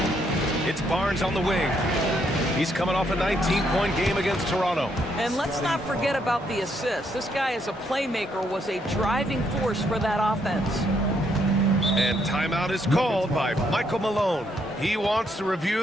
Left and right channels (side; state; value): both; normal; correlation 0.74